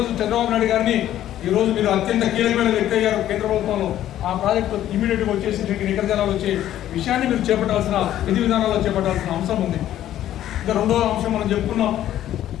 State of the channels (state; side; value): quieter; right; 12.3 dB